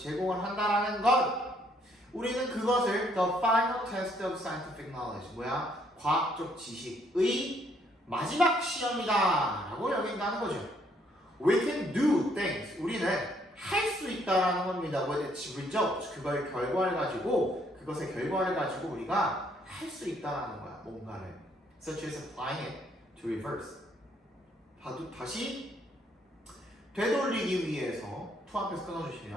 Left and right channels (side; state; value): both; normal; correlation 0.68